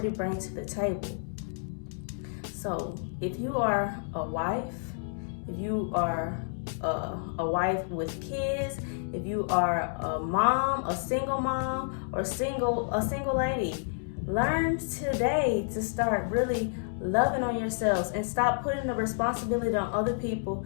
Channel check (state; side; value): silent; right; digital silence